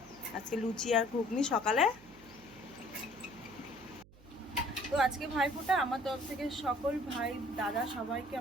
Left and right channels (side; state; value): right; noise; hum, 23 dB below the sound